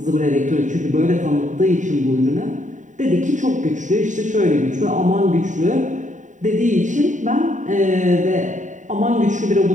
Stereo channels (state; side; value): late; left; 0.36 ms